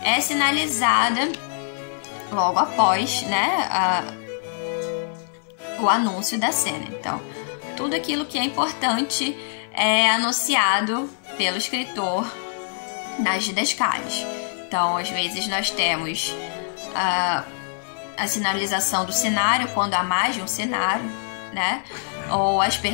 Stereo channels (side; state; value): right; silent; digital silence